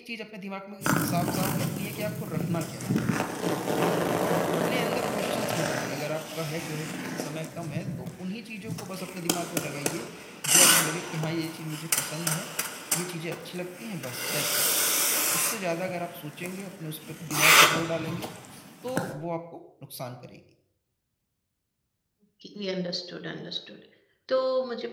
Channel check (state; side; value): identical; both; correlation 1.00